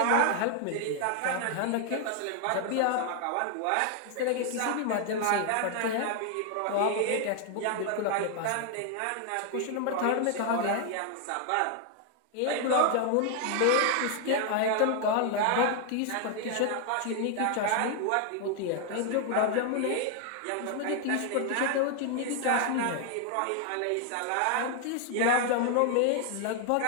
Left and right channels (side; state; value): both; different; correlation 0.00